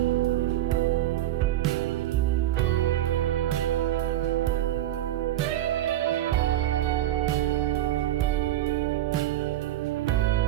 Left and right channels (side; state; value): left; quieter; 13.5 dB